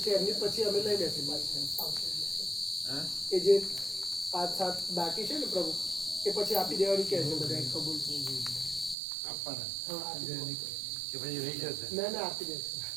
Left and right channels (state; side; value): drops out; left; at 9.0 s